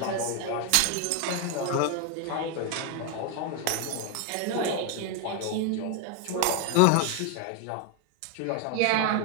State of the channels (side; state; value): both; different; correlation 0.01